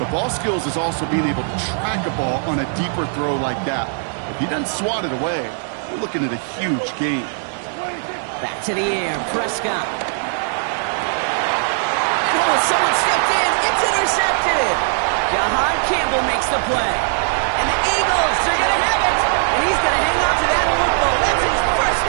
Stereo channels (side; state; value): left; silent; digital silence